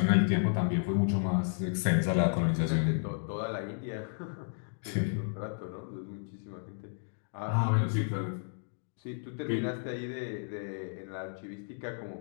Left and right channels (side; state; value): right; silent; digital silence